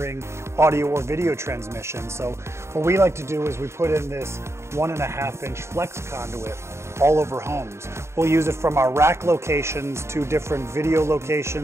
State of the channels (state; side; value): late; left; 0.13 ms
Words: audio, or video transmission. So what we like to do is we put in this 1.5-inch flex conduit all over homes. We'll use it from our rack locations to different video